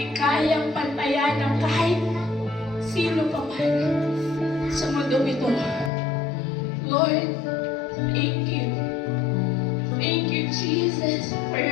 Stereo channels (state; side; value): drops out; right; at 5.9 s